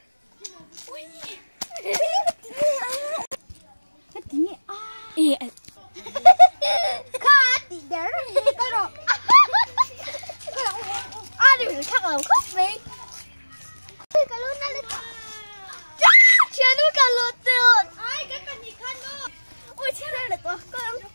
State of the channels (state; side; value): inverted; both; correlation -1.00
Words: Cái tiếng nghe Khá tí đéo rồi cái đó. đi khác là khóc đi. Cái luôn nó lên. Chán nuôi cả lột tiền. Ai cái cần gì khăn luôn. Ôi chết đây là